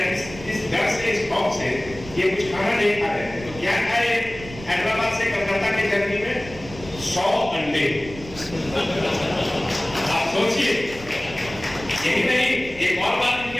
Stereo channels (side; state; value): right; noise; rumble, 15 dB below the sound